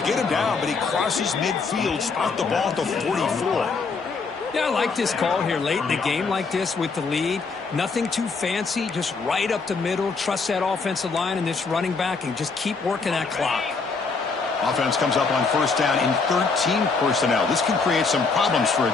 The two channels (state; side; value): quieter; right; 4.5 dB